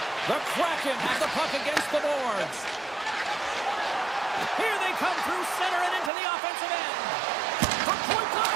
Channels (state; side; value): drops out; left; at 6.1 s